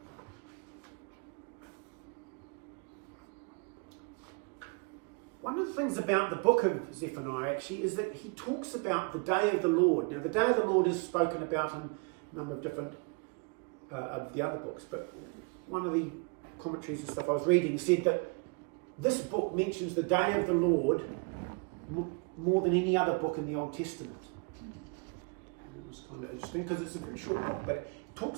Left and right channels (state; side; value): quieter; left; 32.9 dB